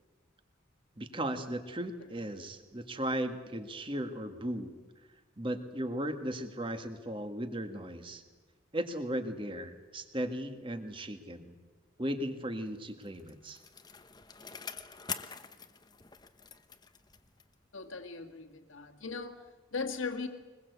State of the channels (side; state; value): both; normal; correlation 0.53